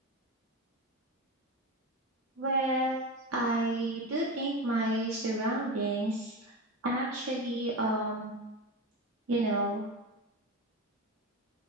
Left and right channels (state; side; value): normal; both; correlation 0.23